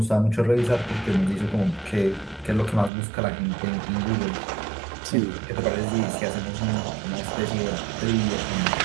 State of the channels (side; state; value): left; drops out; at 2.9 s